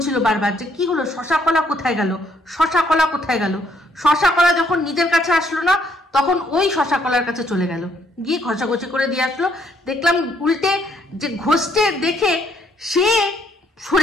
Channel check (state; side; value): normal; both; correlation 0.69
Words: বারবার যে কি হলো, শশা কলা কোথায় গেল, শশা কলা কোথায় গেল। শশা কলা যখন নিজের কাছে আসলো না তখন ওই শশা কলার কাছে চলে গেল, গিয়ে ঘষাঘষি করে দিয়ে আসলো। দেখলাম উল্টে যে ঘষতে দেখে সে